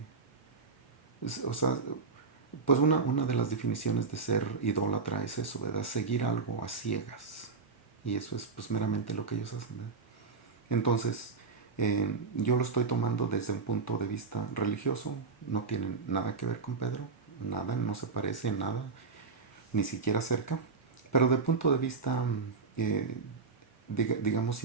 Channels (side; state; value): left; quieter; 4.6 dB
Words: O sea, pues una de las definiciones de ser idólatra es eso, ¿verdad? Seguir algo a ciegas. Y eso es pues meramente lo que ellos hacen, ¿verdad? Entonces, yo lo estoy tomando desde un punto de vista religioso, no tiene nada que ver con Pedro, nada, no se parece en nada, ni siquiera cerca, pero de punto de vista, eh, digamos,